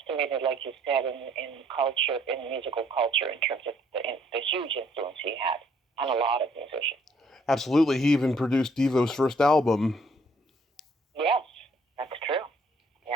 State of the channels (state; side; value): normal; both; correlation 0.64